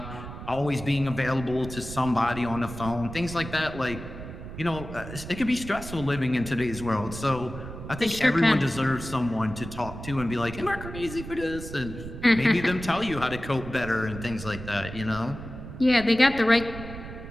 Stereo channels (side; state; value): right; noise; rumble, 11 dB below the sound